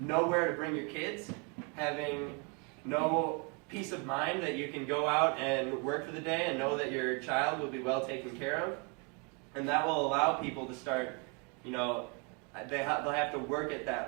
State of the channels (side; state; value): left; quieter; 34.2 dB